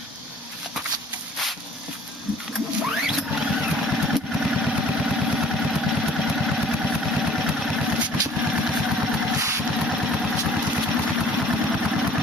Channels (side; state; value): both; normal; correlation 0.53